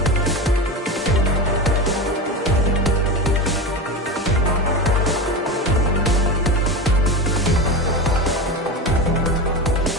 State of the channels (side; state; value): both; normal; correlation 0.22